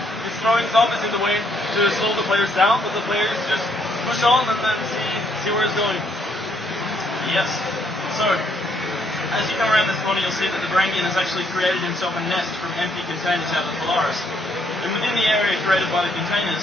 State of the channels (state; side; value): normal; both; correlation 0.70